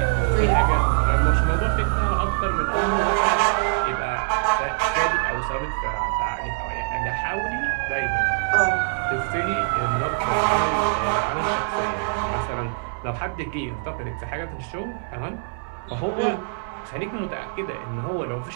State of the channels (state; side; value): silent; left; digital silence